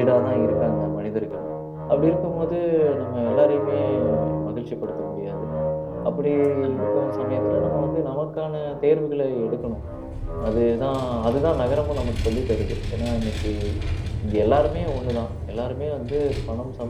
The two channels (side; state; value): both; identical; correlation 1.00